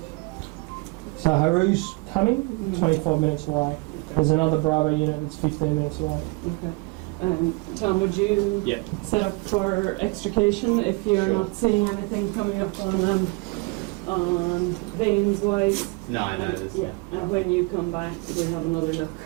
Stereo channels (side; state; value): left; quieter; 27.3 dB